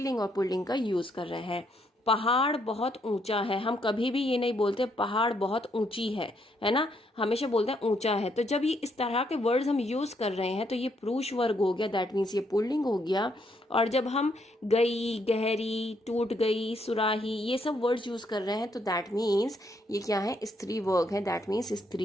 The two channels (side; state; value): both; normal; correlation 0.73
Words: और पुल्लिंग का यूज़ कर रहे हैं। पहाड़ बहुत ऊंचा है, हम कभी भी ये नहीं बोलते पहाड़ बहुत ऊंची है ना, हमेशा बोलते हैं ऊंचा है। तो जब ये इस तरह के वर्ड्स हम यूज कर रहे हैं तो ये पुरुष वर्ग हो गया, दैट मीन्स ये पुल्लिंग हो गया। और जब हम गई, गहरी, टूट गई, सुराही, ये सब वर्ड्स यूज कर रहे हैं तो दैट मीन्स ये क्या है, स्त्री वर्ग है, दैट मीन्स